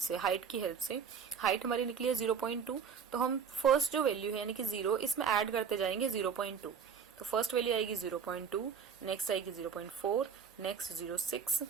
हाइट की हेल्प से। हाइट हमारी निकली है 0.2, तो हम फर्स्ट जो वैल्यू है यानी कि 0, इसमें ऐड करते जाएंगे 0.2। तो फर्स्ट वैल्यू आएगी 0.2, नेक्स्ट आएगी 0.4, नेक्स्ट 0.6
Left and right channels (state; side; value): quieter; left; 6.8 dB